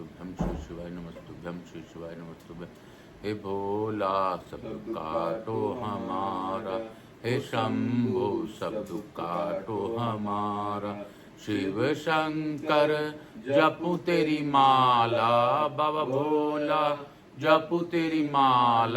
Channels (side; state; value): both; identical; correlation 1.00